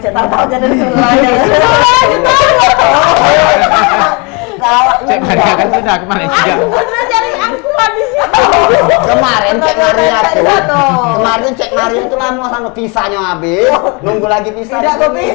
tahu aja dari sebelahnya. Cek Maria kan sudah ke Malaysia. Bener cari aku di sini. Kemarin cek Maria tuh. Betul. Kemarin cek Maria itu lama sama pisahnya habis. Nunggu lagi pisah. Tidak mau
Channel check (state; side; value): quieter; right; 31.3 dB